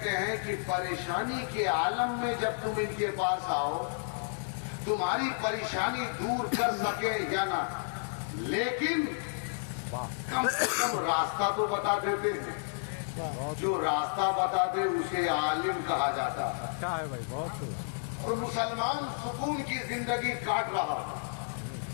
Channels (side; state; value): right; silent; digital silence